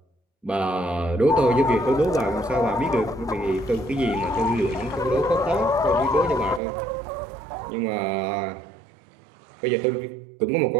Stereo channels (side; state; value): left; drops out; at 6.6 s